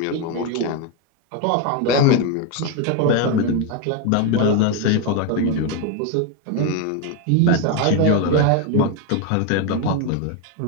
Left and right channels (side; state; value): both; different; correlation 0.02